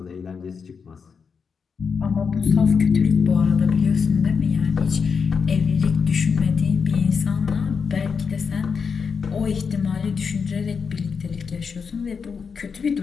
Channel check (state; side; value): quieter; right; 5.8 dB